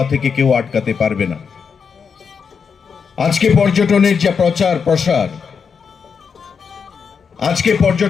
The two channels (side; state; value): right; quieter; 6.1 dB